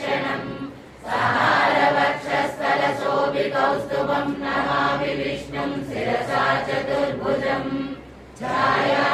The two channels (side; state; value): both; identical; correlation 1.00